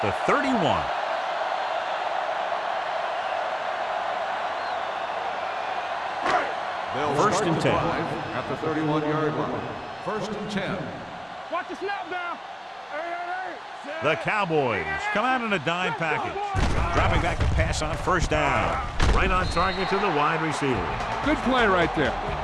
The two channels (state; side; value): identical; both; correlation 1.00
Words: the 31. First and 10. At the 31-yard line. 1st and 10. Watch the snap down. The Cowboys come out in a dime package. Dropping back to pass on 1st down. Right on target to the wide receiver. Good play right there.